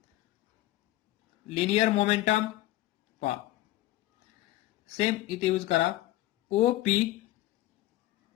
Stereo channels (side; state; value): right; quieter; 16.4 dB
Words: लिनियर मोमेंटम. पहा, सेम इथे यूज करा, ओ पी.